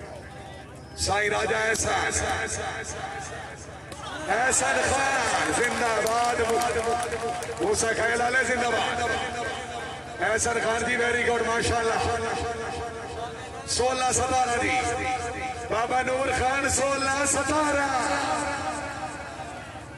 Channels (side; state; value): both; identical; correlation 1.00